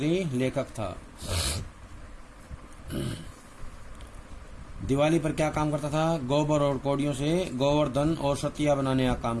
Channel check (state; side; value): identical; both; correlation 1.00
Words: लेखक था। दिवाली पर क्या काम करता था? गोबर और कौड़ियों से गोवर्धन और सतिया बनाने का काम